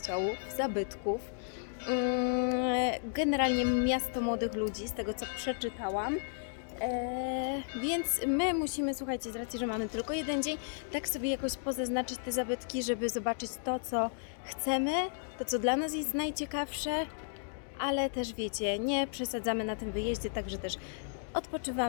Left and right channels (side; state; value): right; silent; digital silence